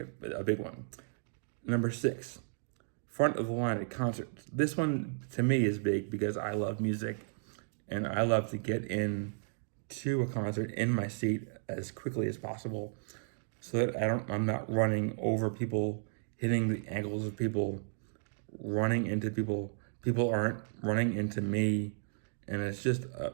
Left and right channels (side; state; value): left; silent; digital silence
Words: one. Number 6, front of the line at concerts. This one to me is big because I love music and I love to get in to a concert in my seat as quickly as possible so that I'm not running over people, hitting the ankles of people, running into people. People aren't running into me, and it's just